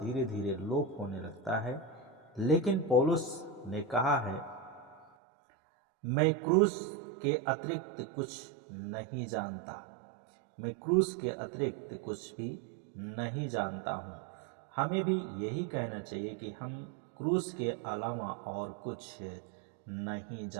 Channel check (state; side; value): drops out; left; at 5.1 s